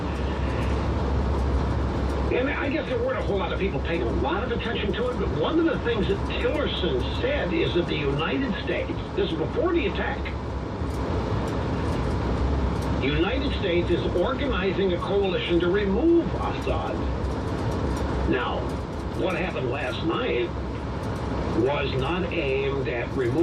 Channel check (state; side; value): identical; both; correlation 1.00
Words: And I guess there weren't a whole lot of people paying a lot of attention to it, but one of the things that Tillerson said is that the United States, this is before the attack, the United States is organizing a coalition to remove Assad. Now, what happened last night was not aimed at